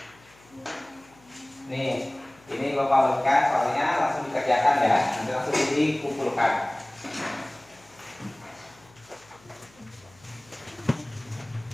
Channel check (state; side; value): noise; left; hum, 28 dB below the sound